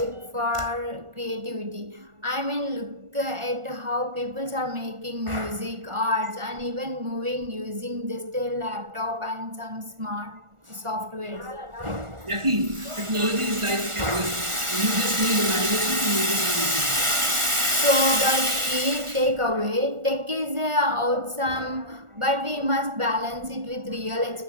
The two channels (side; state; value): left; late; 1.4 ms